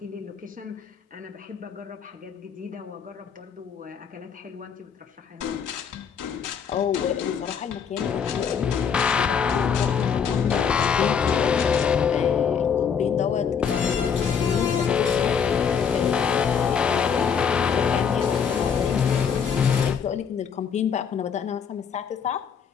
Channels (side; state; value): right; quieter; 6.9 dB